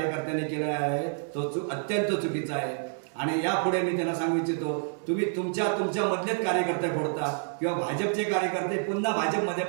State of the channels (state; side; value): silent; left; 56 dB below the other